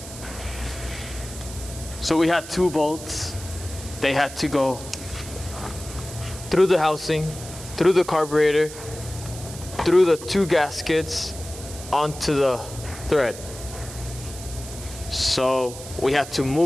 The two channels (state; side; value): noise; right; hiss, 13 dB below the sound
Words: So we had 2 bolts. They had to go through the housing, through the carburetor, through the 2 gaskets, onto the thread. So we had to